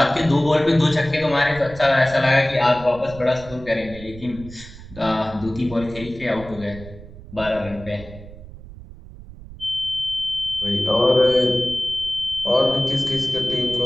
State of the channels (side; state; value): right; noise; rumble, 16 dB below the sound